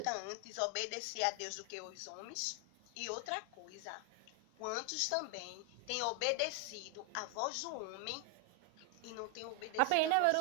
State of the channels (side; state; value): both; different; correlation 0.00